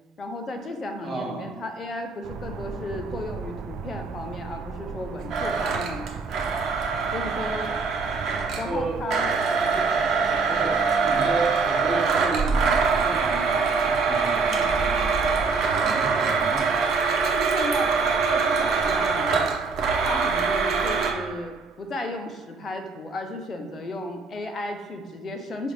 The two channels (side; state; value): left; quieter; 4.1 dB